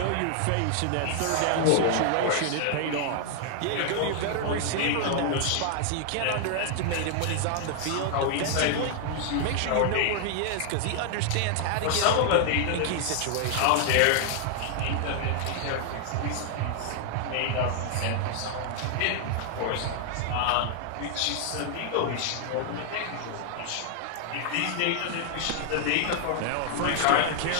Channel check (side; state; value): both; different; correlation 0.00